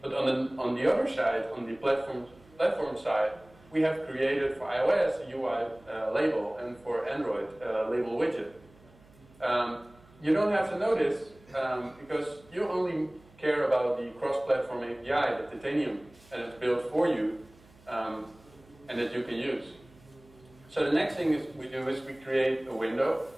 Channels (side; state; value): right; noise; hum, 27 dB below the sound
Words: But on the other side, on the platform side, we have created for iOS a UI label and for Android a label widget. You don't have to know this because you only care about the cross-platform API that Titanium has built for you and that you can use. So the next thing we do is we create a window.